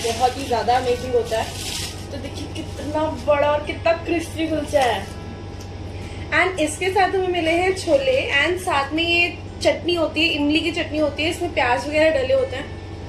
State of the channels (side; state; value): both; identical; correlation 1.00